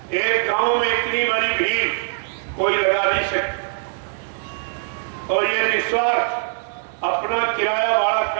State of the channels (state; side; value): silent; left; digital silence